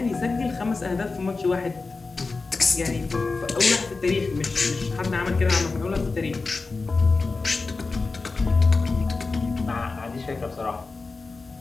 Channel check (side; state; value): right; quieter; 4.0 dB